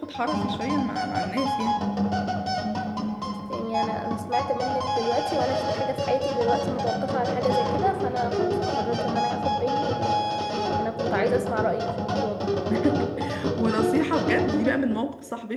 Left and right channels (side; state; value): both; identical; correlation 1.00